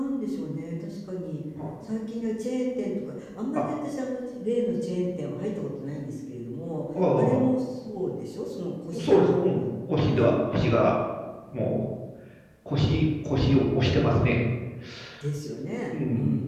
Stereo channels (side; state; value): both; identical; correlation 1.00